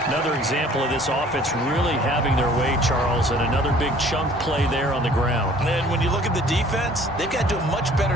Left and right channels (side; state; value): both; normal; correlation 0.53